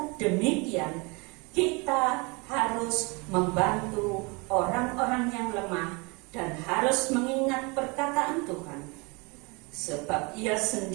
demikian kita harus membantu orang-orang yang lemah dan harus mengingat perkataan Tuhan. Sebab ia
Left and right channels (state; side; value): quieter; left; 28.9 dB